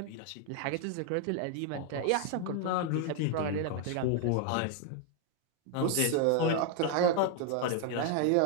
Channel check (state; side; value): different; both; correlation 0.00